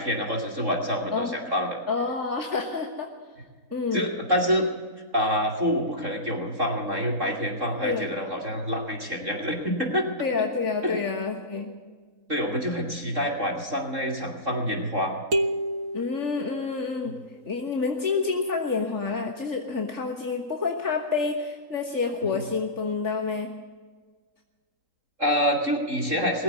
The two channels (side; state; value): left; late; 3.7 ms